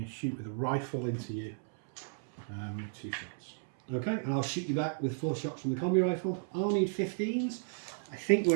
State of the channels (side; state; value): left; silent; 55 dB below the other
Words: to shoot with a rifle into you. 2 shots. Okay, and I'll shoot you back with 4 shots from the combi rifle. I'll need 15s. I think